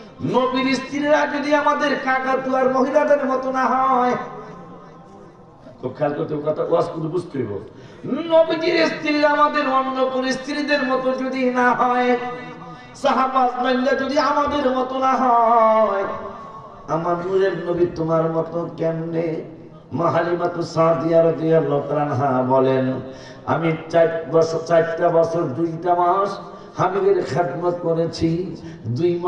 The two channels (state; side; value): identical; both; correlation 1.00